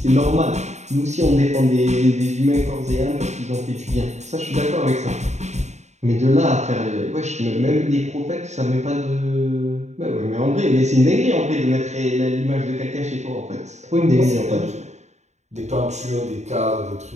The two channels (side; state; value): left; late; 0.33 ms